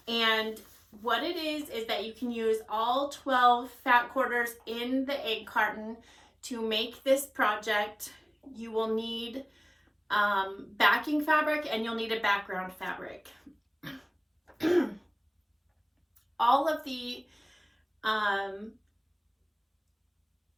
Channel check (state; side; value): identical; both; correlation 1.00